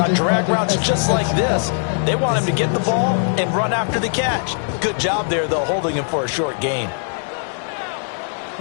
drag routes just like this. They want him to get the ball and run after the catch. Good job there, though, holding him for a short gain.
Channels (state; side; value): silent; right; digital silence